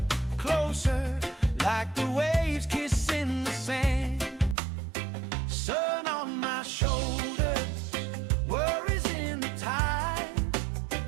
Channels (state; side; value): drops out; left; at 4.5 s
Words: closer, like the waves kissing the sand. Sun on my shoulders, worries in the tide.